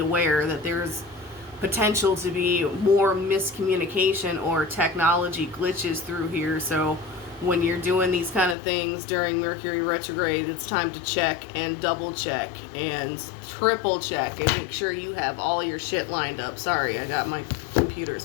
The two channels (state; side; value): drops out; right; at 8.6 s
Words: that there's potential to be more miscommunication or technology glitches through here. So when you're doing these kind of things during Mercury retrograde, it's time to check and double check and triple check and make sure you have all your shit lined up. Sorry, I got my